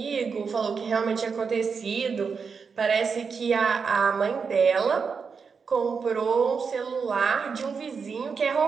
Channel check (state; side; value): quieter; left; 5.6 dB